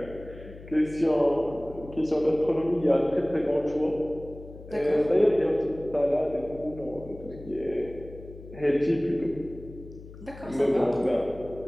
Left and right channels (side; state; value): left; noise; hum, 16 dB below the sound